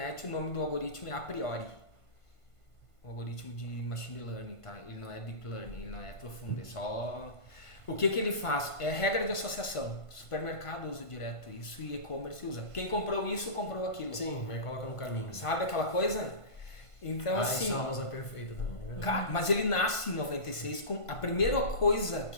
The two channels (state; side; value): late; right; 1.5 ms